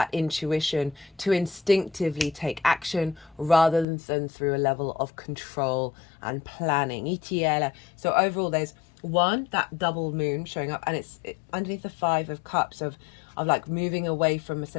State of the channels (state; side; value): drops out; right; at 3.9 s